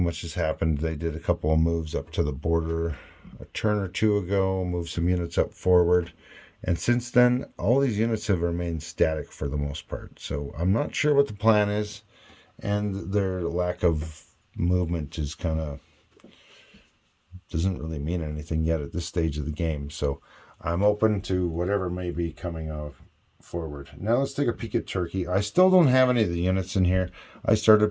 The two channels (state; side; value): identical; both; correlation 1.00